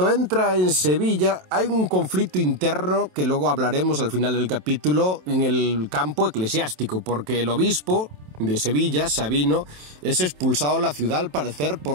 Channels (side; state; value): left; late; 27 ms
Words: entra en Sevilla hay un conflicto interno, que luego hablaremos al final del capítulo, en el campo eclesiástico, porque el obispo de Sevilla, Sabino, es expulsado de la ciudad al parecer